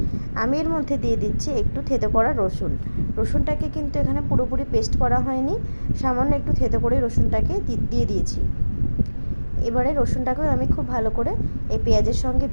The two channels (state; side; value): inverted; both; correlation -1.00